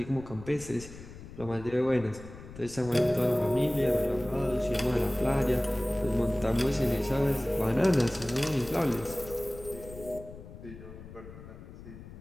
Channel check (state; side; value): noise; left; rumble, 15 dB below the sound